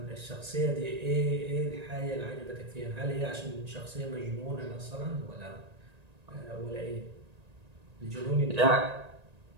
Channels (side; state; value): left; late; 1.9 ms